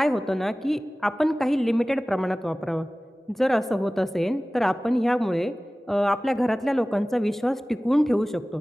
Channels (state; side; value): normal; both; correlation 0.98